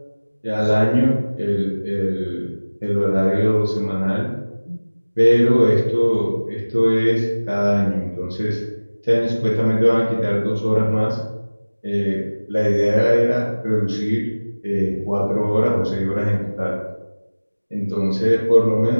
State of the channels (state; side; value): inverted; both; correlation -1.00